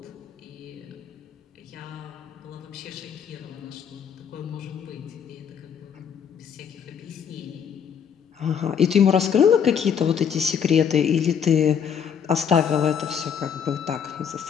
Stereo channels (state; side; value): quieter; right; 7.7 dB